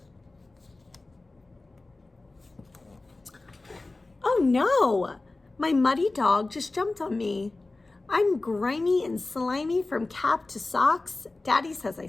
Oh no! My muddy dog just jumped on me. I'm grimy and slimy from cap to socks. Daddy says I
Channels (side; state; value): right; quieter; 3.2 dB